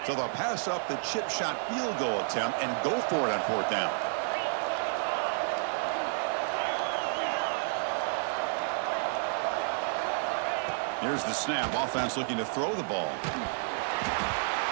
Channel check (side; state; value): left; silent; digital silence